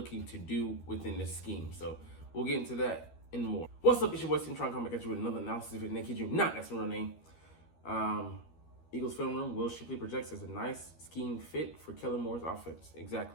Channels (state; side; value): late; right; 12 ms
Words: to do within this scheme. So we'll get into that and more. What's up, it's your boy Cintron coming back at you with another analysis of it. Kid you not, that's my real name. Eagles film room, Will Shipley projects as a nice scheme fit for Kellen Moore's offense.